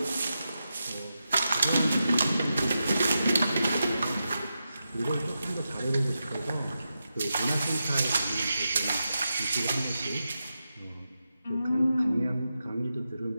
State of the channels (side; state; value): both; inverted; correlation -0.89